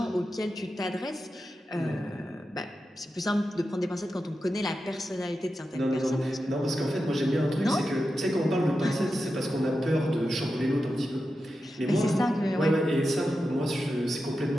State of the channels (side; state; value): both; normal; correlation 0.90